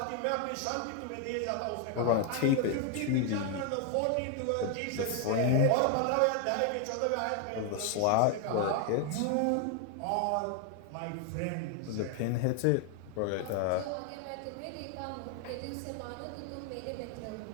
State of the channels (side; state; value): both; different; correlation 0.00